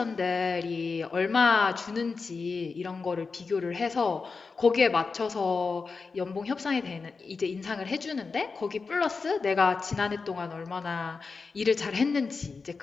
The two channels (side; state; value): right; quieter; 4.6 dB